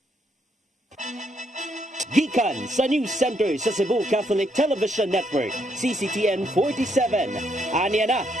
Gikan sa News Center sa Cebu Catholic Television Network, CCTN 47. Aniya na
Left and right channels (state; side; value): normal; both; correlation 0.74